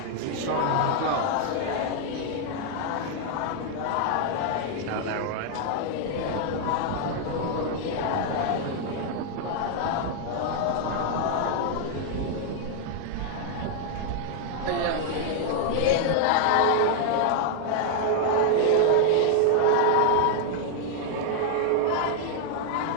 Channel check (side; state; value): both; different; correlation 0.00